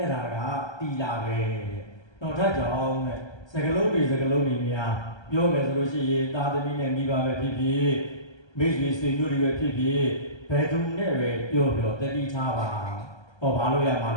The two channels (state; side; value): late; right; 1.3 ms